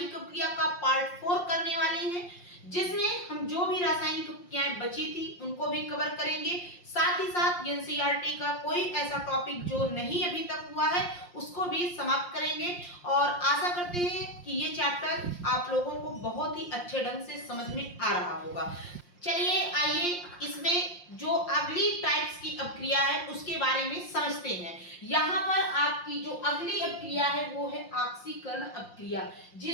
अपक्रिया का पार्ट 4 करने वाले हैं, जिसमें हम जो भी रासायनिक अपक्रियाएं बची थी उनको भी कवर करेंगे। साथ ही साथ एनसीईआरटी का कोई ऐसा टॉपिक जो नहीं अभी तक हुआ है उसको भी समाप्त करेंगे और आशा करते हैं कि ये चैप्टर आप लोगों को बहुत ही अच्छे ढंग से समझ में आ रहा होगा। चलिए आइए इसमें जो अगली टाइप्स की अपक्रिया है उसके बारे में समझते हैं। यहाँ पर आपकी जो अगली अपक्रिया है वो है ऑक्सीकरण अपक्रिया,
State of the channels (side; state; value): right; late; 5.7 ms